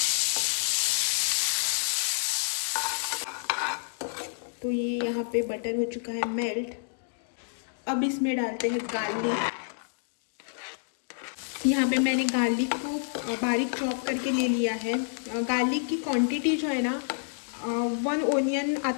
तो ये यहाँ पे बटर हो चुका है मेल्ट। अब इसमें डालते हैं गार्लिक। यहाँ पे मैंने गार्लिक को बारीक चॉप करके ले लिया है। गार्लिक की क्वांटिटी जो है ना 1 ओनियन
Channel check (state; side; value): silent; right; digital silence